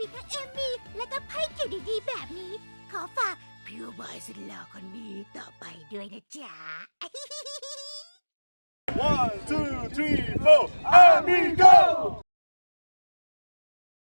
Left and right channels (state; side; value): inverted; both; correlation -1.00